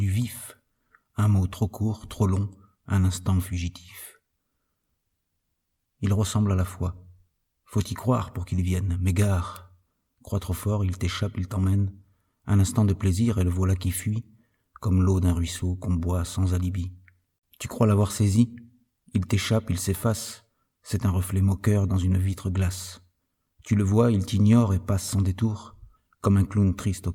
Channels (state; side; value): identical; both; correlation 1.00